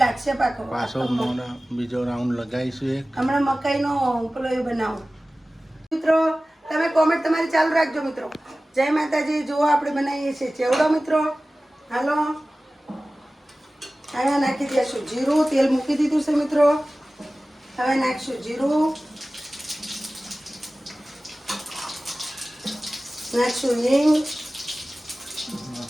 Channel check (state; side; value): normal; both; correlation 0.97